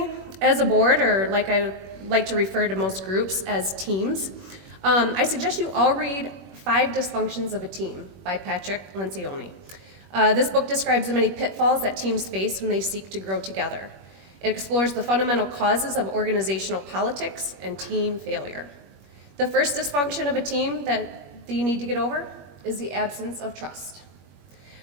as a board, or like I like to refer to most groups as teams, I suggest you all read 5 Dysfunctions of a Team by Patrick Lencioni. This book describes the many pitfalls that teams face when they seek to grow together. It explores the fundamental causes of organizational politics and team failure. The first dysfunction of a team that you need to get over is the absence of trust.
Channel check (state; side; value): late; left; 21 ms